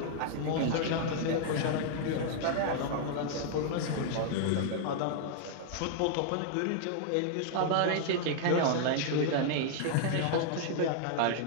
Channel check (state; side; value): different; both; correlation -0.01